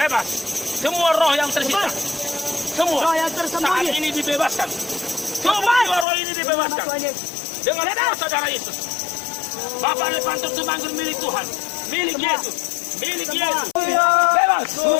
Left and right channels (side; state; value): right; drops out; at 6.1 s